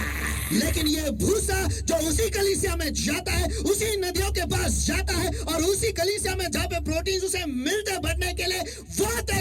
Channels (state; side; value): identical; both; correlation 1.00